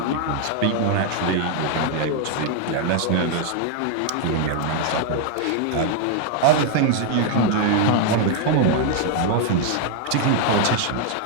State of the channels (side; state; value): both; different; correlation 0.00